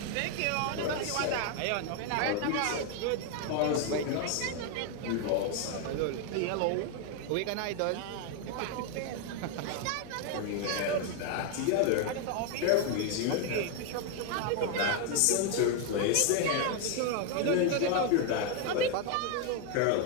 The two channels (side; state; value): both; different; correlation 0.01